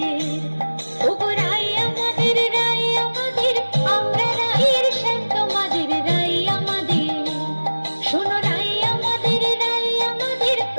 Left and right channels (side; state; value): both; inverted; correlation -1.00